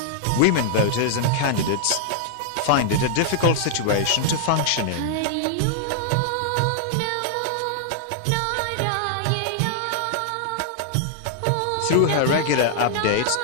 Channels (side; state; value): both; different; correlation -0.01